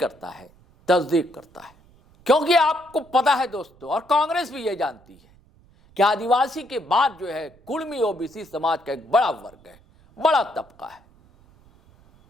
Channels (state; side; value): noise; right; rumble, 29 dB below the sound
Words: है, तस्दीक करता है। क्योंकि आपको पता है दोस्तों, और कांग्रेस भी यह जानती है कि आदिवासी के बाद जो है कुर्मी ओबीसी समाज का एक बड़ा वर्ग है, बड़ा तबका है।